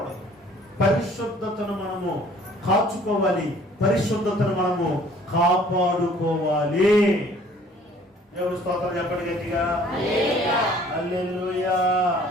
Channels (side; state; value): both; normal; correlation 0.55